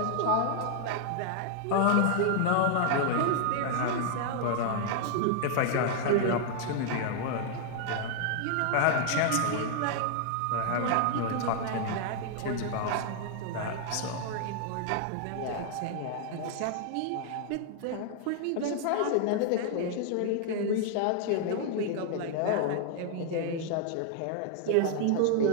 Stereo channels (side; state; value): both; different; correlation 0.00